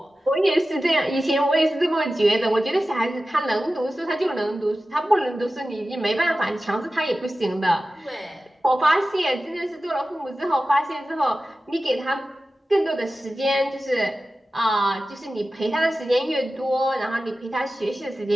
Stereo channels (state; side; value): normal; both; correlation 0.94